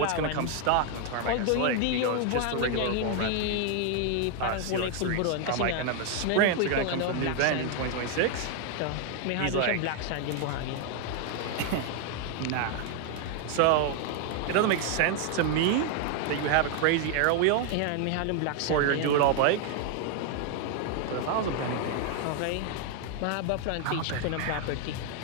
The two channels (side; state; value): both; different; correlation 0.00